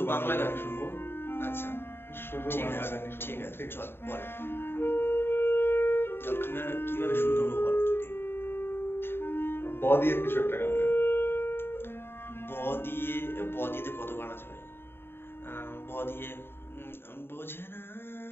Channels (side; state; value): right; late; 0.11 ms